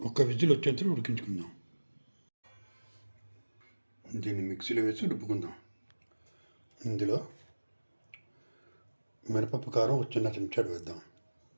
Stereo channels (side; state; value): both; inverted; correlation -1.00